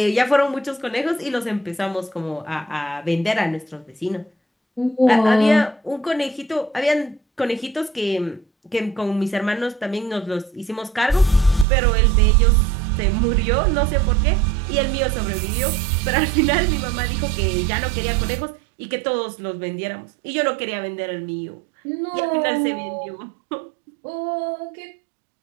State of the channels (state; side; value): drops out; left; at 11.7 s